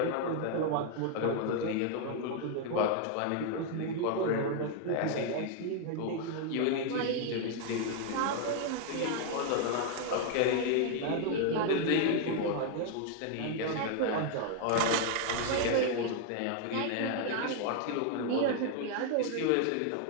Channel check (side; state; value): both; different; correlation 0.00